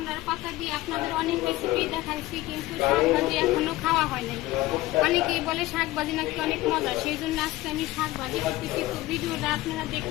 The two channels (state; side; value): quieter; right; 17.5 dB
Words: পাতা দিয়ে আপনাদের অনেক রেসিপি দেখাইছি, কিন্তু শাক ভাজি এখনো খাওয়া হয় নাই। অনেকেই বলে শাক ভাজি নাকি অনেক মজা, সেই জন্য আজকে আমি শাক ভাজি করতেছি। তো ভিডিওটা আপনারা